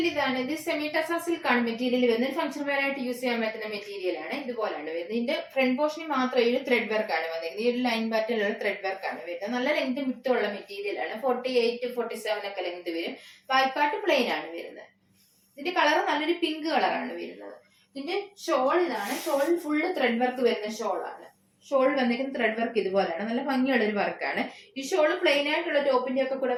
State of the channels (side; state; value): both; identical; correlation 1.00